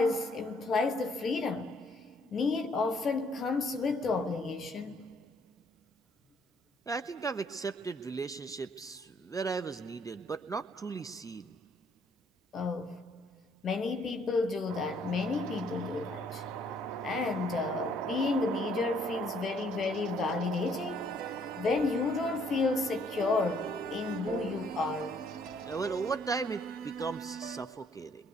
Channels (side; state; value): both; normal; correlation 0.65